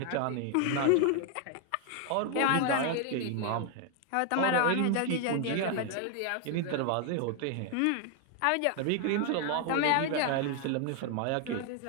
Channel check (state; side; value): different; both; correlation 0.00